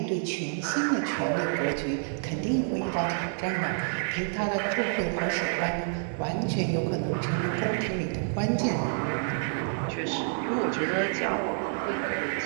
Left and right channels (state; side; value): silent; left; digital silence